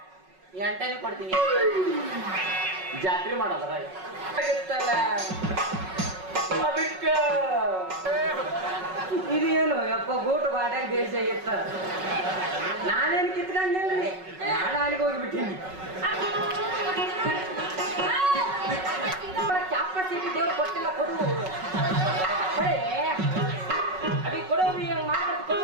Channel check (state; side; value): late; left; 5.4 ms